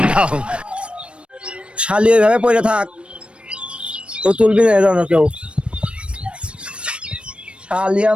শালি ওইভাবে পড়ে থাক, তো তুলবি না এজন্য কেউ। শালি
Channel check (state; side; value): late; left; 0.058 ms